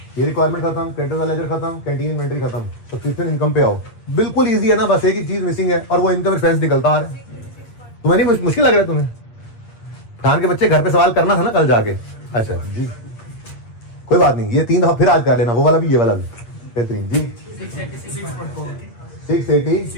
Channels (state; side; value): late; right; 8.6 ms